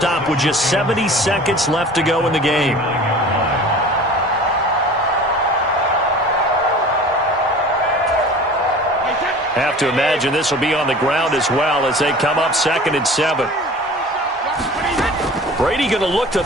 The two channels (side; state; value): both; normal; correlation 0.42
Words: with just 70 seconds left to go in the game. Have to imagine this will be on the ground as well as they come up 2nd and 7. Brady going to look to